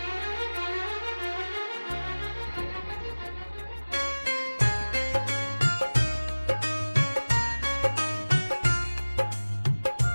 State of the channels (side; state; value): both; inverted; correlation -1.00